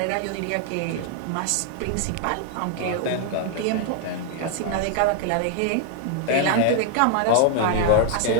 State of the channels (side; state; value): both; different; correlation 0.00